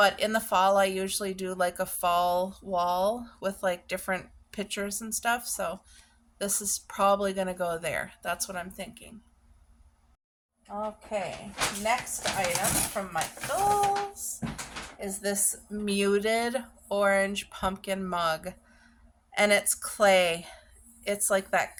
in the fall, I usually do like a fall wall with like different pictures and stuff. So this is probably going to go there. That's what I'm thinking. Okay, next item from Michaels is this muted orange pumpkin mug. And it's clay. It's like that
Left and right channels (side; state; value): both; identical; correlation 1.00